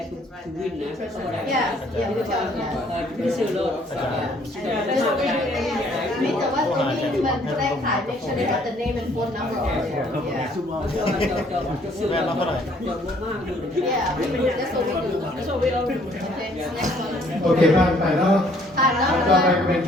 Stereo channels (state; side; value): normal; both; correlation 0.62